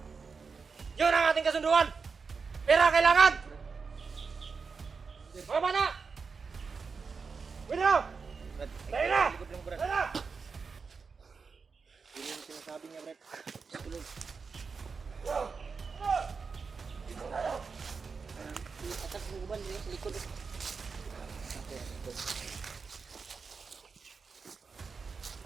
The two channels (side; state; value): left; quieter; 5.1 dB